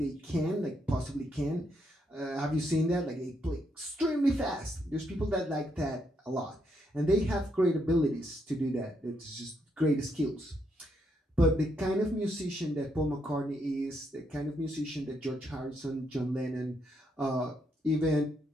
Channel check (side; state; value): both; normal; correlation 0.77